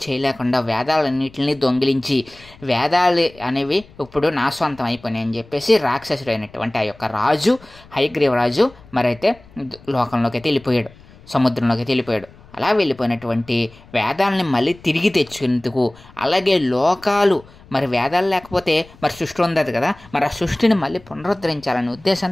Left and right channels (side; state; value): left; noise; rumble, 24 dB below the sound